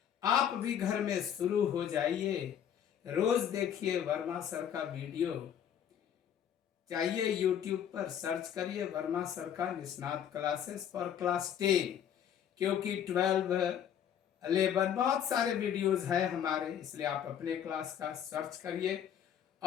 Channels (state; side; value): quieter; right; 9.2 dB